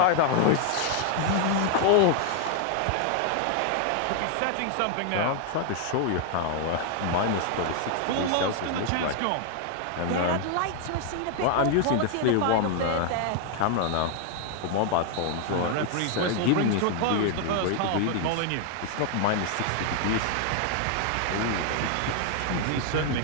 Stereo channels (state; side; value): different; both; correlation 0.00